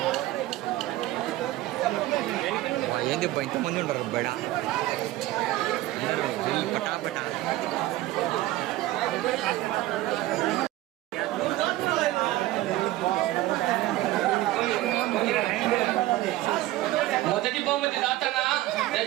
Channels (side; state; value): left; quieter; 16.4 dB